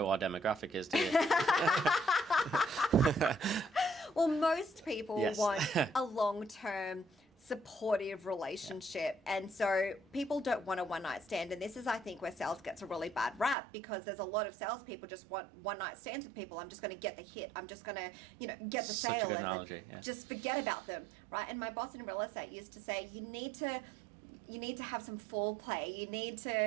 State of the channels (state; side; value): drops out; left; at 13.6 s